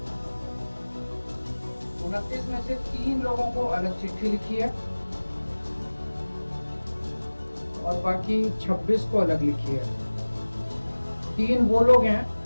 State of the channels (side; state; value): both; inverted; correlation -1.00